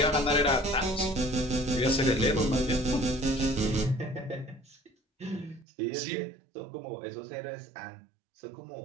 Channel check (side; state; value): left; drops out; at 5.7 s